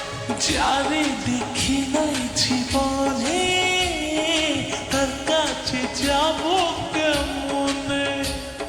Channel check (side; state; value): both; identical; correlation 1.00